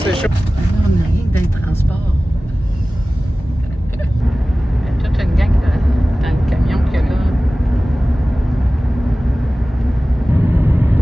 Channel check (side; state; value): both; normal; correlation 0.97